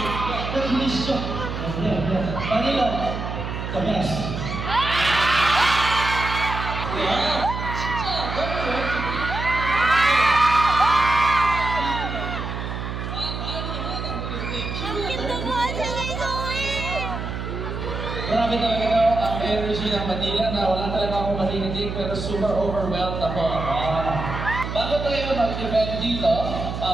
네, 들리시죠? 네. Manila, the best. Grabe talaga daw ang energy ng Manila na wala talaga akong marinig pero super overwhelmed ako. Bago tayo mag-event dito,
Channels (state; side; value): noise; right; hum, 5 dB below the sound